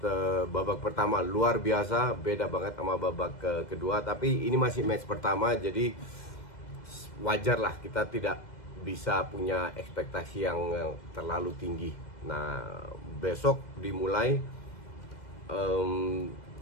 babak pertama luar biasa, beda banget sama babak kedua. Tapi ini masih match pertama, jadi wajar lah kita tidak bisa punya ekspektasi yang terlalu tinggi. Nah, besok dimulai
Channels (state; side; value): late; right; 2.0 ms